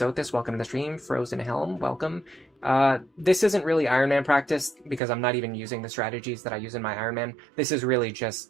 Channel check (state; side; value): drops out; left; at 5.0 s